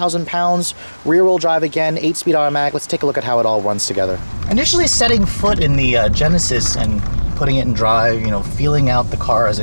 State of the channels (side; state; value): both; inverted; correlation -1.00